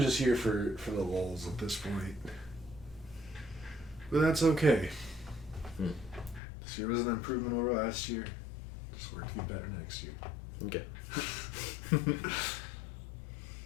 just here for the lulz at this point. But that's okay. This year was an improvement over last year. Just work to get better next year. Okay. You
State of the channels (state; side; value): drops out; right; at 6.4 s